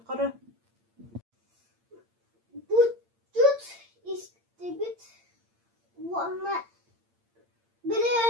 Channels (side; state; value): left; late; 8.7 ms